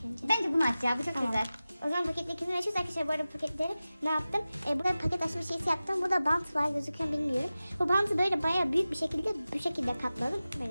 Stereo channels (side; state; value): both; inverted; correlation -0.96